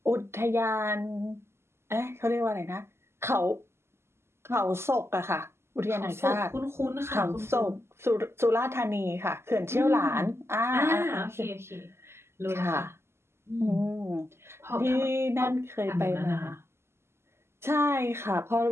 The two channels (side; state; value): left; late; 0.12 ms